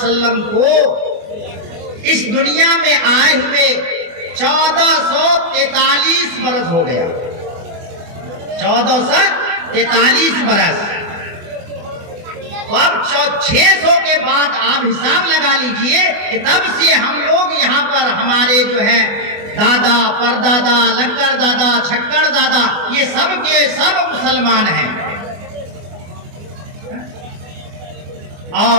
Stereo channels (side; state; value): left; late; 24 ms